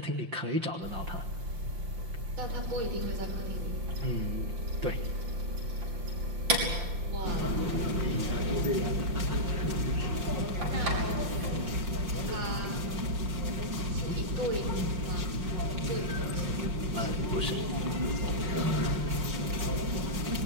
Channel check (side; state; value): left; late; 5.7 ms